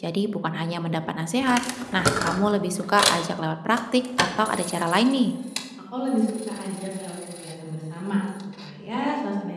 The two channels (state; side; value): identical; both; correlation 1.00